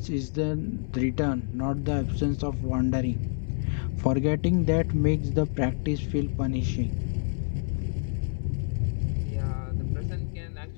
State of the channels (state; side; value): silent; right; 60 dB below the other